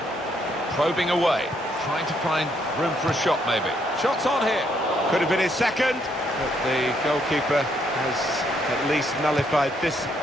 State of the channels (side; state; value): both; normal; correlation 0.72